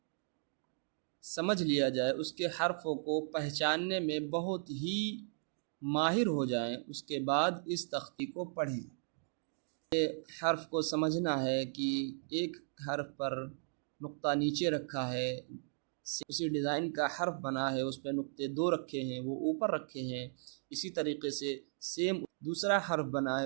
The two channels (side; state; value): left; silent; digital silence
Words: سمجھ لیا جائے، اس کے حرفوں کو پہچاننے میں بہت ہی ماہر ہو جائیں، اس کے بعد اس تختی کو پڑھیں۔ یہ حرف کو سمجھنا ہے کہ ایک حرف پر نقطہ نیچے رکھا ہے، اسی ڈیزائن کا حرف بنا ہے، اس پہ نقطے 2 رکھے ہیں، وہ اوپر رکھے ہیں۔ اسی طریقے سے سیم دوسرا حرف بنا ہے،